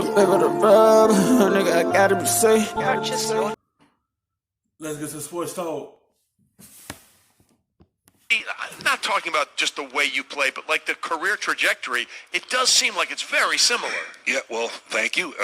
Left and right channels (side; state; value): both; identical; correlation 1.00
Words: bit of the rub, nigga, I gotta be safe. Let's get to sports talk. I'm not talking about just the way you play, but like the career trajectory, it does seem like it's very similar. Yeah, well, thank you